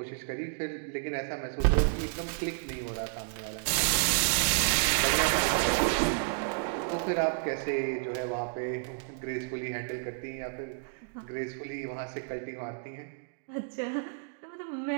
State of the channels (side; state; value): left; silent; digital silence